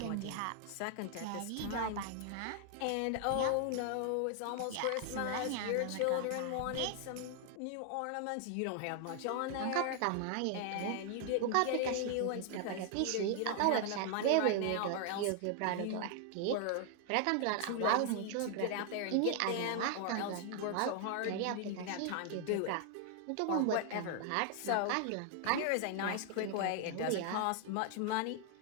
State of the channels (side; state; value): both; different; correlation 0.00